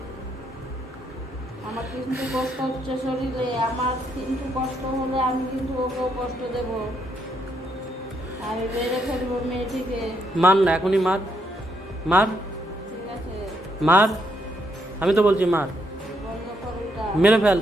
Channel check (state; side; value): normal; both; correlation 0.75